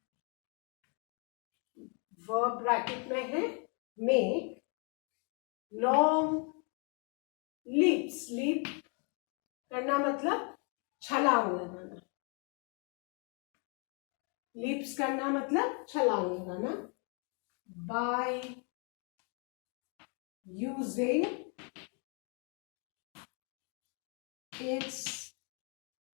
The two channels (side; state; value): right; quieter; 37.8 dB